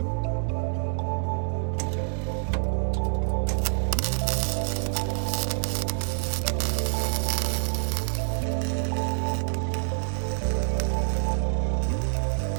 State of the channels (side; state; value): left; silent; digital silence